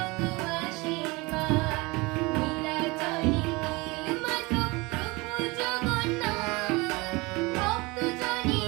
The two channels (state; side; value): quieter; left; 24.6 dB